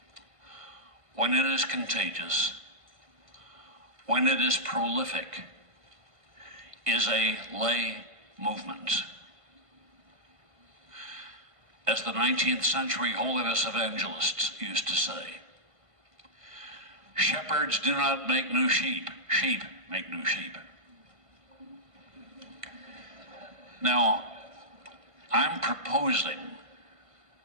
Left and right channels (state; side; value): late; left; 1.5 ms